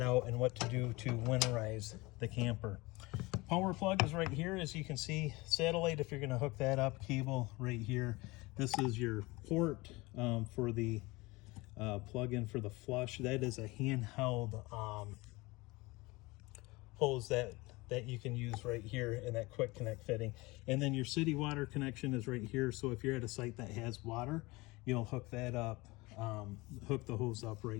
out and what to do to winterize the camper. Power plug is right here, as you can see. Satellite, if you're going to hook that up, cable right here. This is your port for the plug-in for the flush. That is a handheld hose that you can use right here in that quick connect fitting. And then your city water connection is right here. So if you're at a site that has water, you'll hook that up, hook the hose up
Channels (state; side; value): quieter; right; 22.8 dB